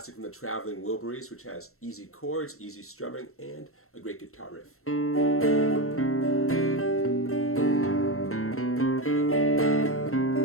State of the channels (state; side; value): late; right; 0.63 ms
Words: from the traveling Wilburys, which has easy chords, easy strumming, and a great guitar riff.